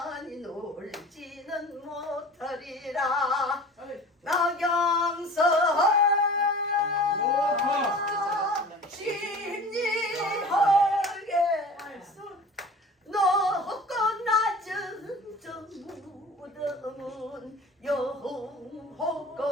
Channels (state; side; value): normal; both; correlation 0.41